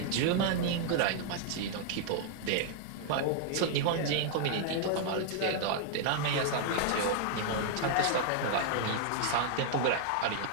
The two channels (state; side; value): different; both; correlation 0.00